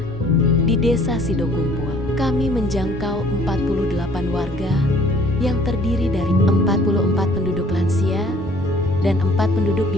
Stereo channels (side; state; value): both; normal; correlation 0.56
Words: di Desa Sidokumpul. Kami menjangkau 48 warga yang terdiri dari 44 penduduk lansia dan 4 penduduk di